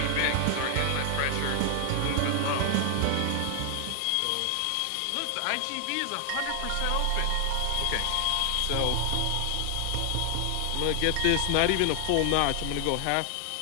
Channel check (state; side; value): different; both; correlation 0.00